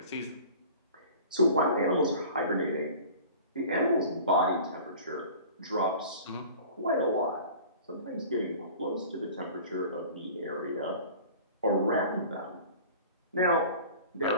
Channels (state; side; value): inverted; both; correlation -0.43